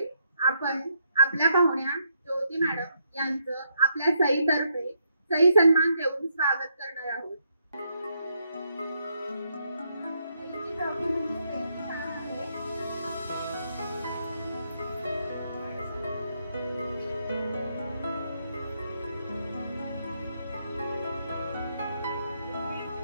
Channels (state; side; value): inverted; both; correlation -0.76